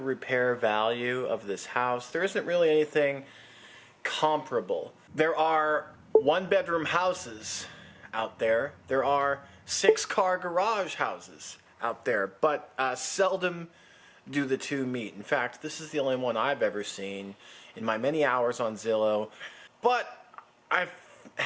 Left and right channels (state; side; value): identical; both; correlation 1.00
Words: value of this house. There isn't really anything comparable. There are 1-bedroom houses out there. There are 6-car garage houses out there, but seldom do the two meet. In fact, this is the only one I've ever seen in my many hours on Zillow. But I